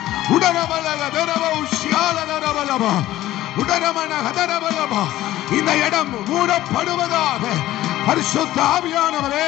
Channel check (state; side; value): quieter; right; 14.9 dB